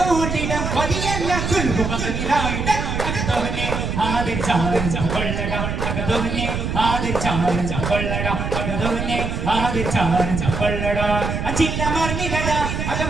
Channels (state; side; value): noise; right; rumble, 3 dB below the sound